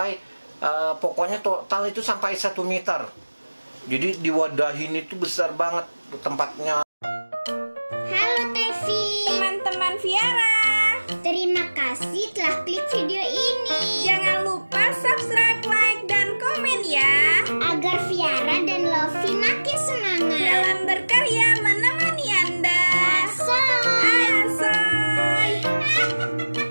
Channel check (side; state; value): both; inverted; correlation -1.00